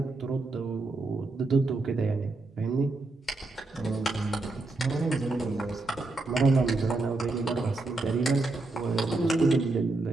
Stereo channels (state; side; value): quieter; left; 3.2 dB